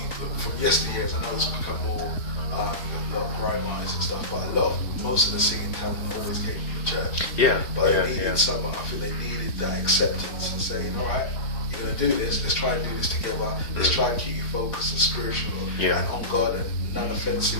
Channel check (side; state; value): right; late; 3.9 ms